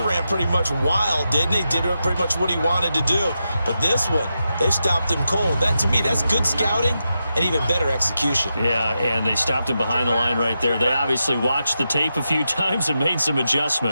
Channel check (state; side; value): inverted; both; correlation -0.88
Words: ran pretty much wild, didn't he? Did pretty much what he wanted to do. But this one, they stopped him cold. That, to me, that's good scouting and even better execution. Yeah, and they stopped him behind the line right there. They obviously watched the tape a few times and made some